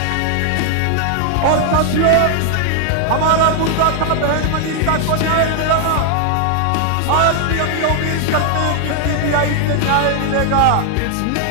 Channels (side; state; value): both; different; correlation 0.00